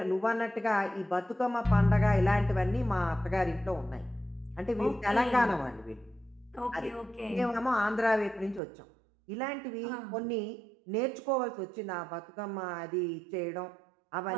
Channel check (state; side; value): drops out; left; at 8.6 s